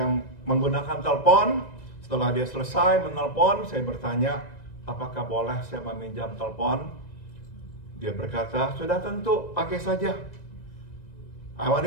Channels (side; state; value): right; late; 2.0 ms